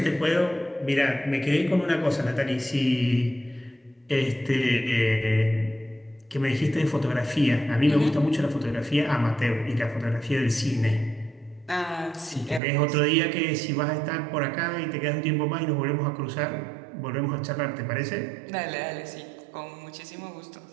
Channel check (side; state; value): left; drops out; at 12.6 s